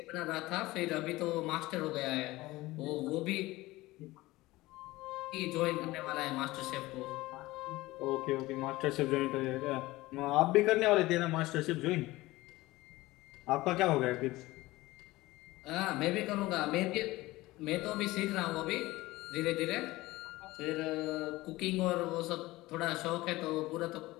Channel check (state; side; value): quieter; right; 19.1 dB